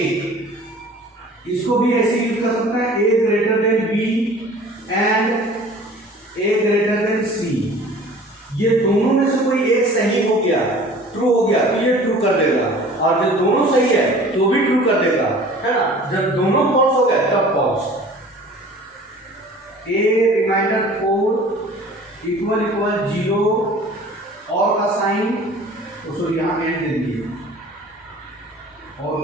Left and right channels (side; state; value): both; normal; correlation 0.46